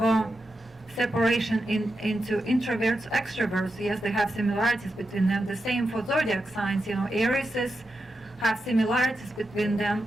a separation into introverts, extroverts. Yes, they have similarities between them. The same for zodiac signs. Aries have similarities between them.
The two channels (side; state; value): both; normal; correlation 0.88